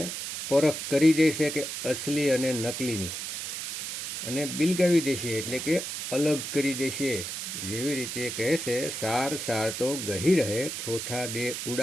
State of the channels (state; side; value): noise; right; hiss, 5 dB below the sound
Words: પરખ કરી દેશે કે અસલી અને નકલીની, અને બિલગાવી દેશે, એટલે કે અલગ કરી દેશે. જેવી રીતે કહે છે, સાર સાર તો ગહી રહે, થોથા દે